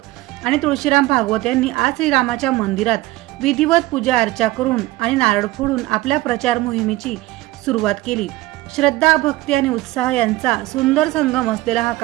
आणि तुळशीराम भागवत यांनी आज श्रीरामाच्या मंदिरात विधिवत पूजा अर्चा करून आणि नारळ फोडून आपल्या प्रचार मोहिमेची सुरुवात केली। श्रद्धा, भक्ती आणि उत्साह यांचा सुंदर संगम असलेला हा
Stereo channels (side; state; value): left; quieter; 18.0 dB